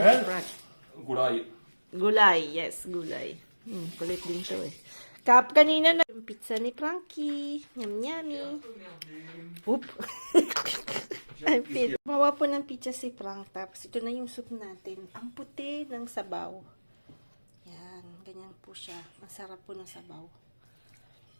ni Frank. Gulay. Gulay, yes, gulay. Kulit din to eh. Kanina na yung pizza ni Frankie. Yum, yummy. Oop. Mawa po ng pizza si Frank. Tapos ito na yung soup natin. Ang puti ng sabaw. Yan, ganyan po siya. Masarap po ng sabaw.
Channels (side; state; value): both; inverted; correlation -1.00